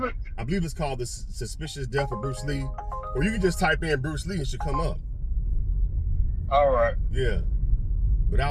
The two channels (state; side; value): identical; both; correlation 1.00